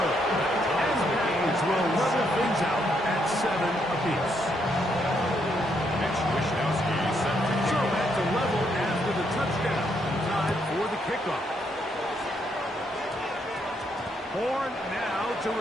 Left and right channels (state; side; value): normal; both; correlation 0.75